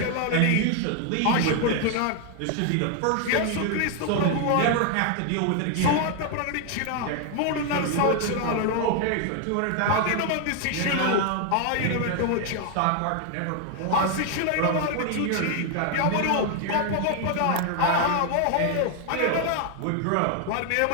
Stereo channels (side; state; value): both; different; correlation 0.01